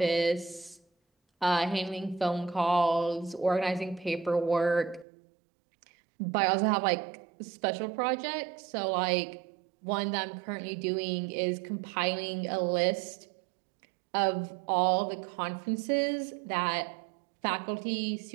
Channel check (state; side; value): drops out; left; at 5.1 s